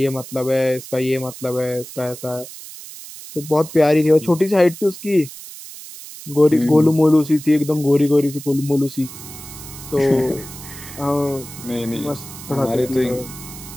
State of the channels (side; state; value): right; noise; hiss, 14 dB below the sound